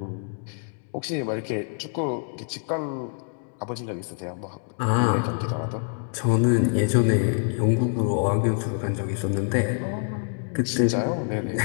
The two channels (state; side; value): silent; right; 61 dB below the other